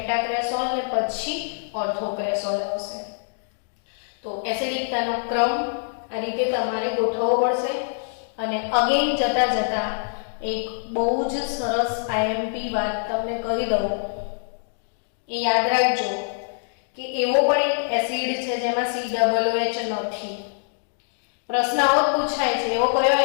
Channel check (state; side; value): silent; right; digital silence